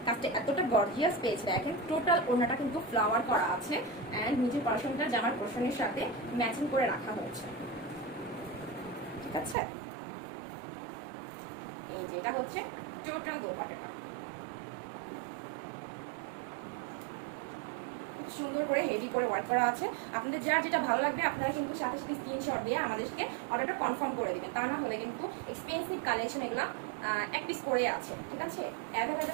কাজটা এতটা গর্জিয়াস পেয়েছে। দেখেন টোটাল ওড়নাটা কিন্তু ফ্লাওয়ার করা আছে অ্যান্ড নিচের পোরশনটা জামার পোরশনের সাথে ম্যাচিং করে রাখা হয়েছে, ঠিক আছে? এই যে এটা হচ্ছে টোটাল দোপাট্টাটা, খুব সুন্দর করে হেভি করে ওয়ার্ক করা আছে। আপনাদের যার যেটা ভালো লাগবে আপনারা কিন্তু সাথে সাথে স্ক্রিনশট দিয়ে আমাদেরকে অর্ডারটা কনফার্ম করে দিবেন। তা না হলে কিন্তু এক্সপেন্সিভ কালেকশন এগুলো এক পিস করে আছে, ঠিক আছে?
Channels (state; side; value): drops out; left; at 9.6 s